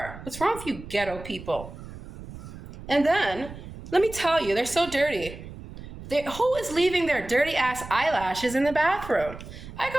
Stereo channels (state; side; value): noise; right; rumble, 14 dB below the sound